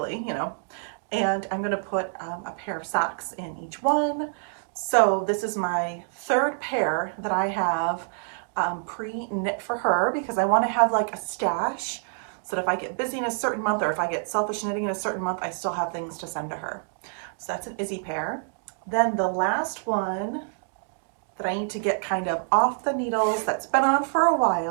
And I'm going to put a pair of socks in each one. So this is my 3rd pair that I have pre-knit for her, because I want to have like a stash so that if I get busy in a certain month, or if I get selfish knitting in a certain month, I still have things to send to her. So that's an Izzy pair. Then the last one that I need to get kind of off the needles, that's been on for a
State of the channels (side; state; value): left; silent; digital silence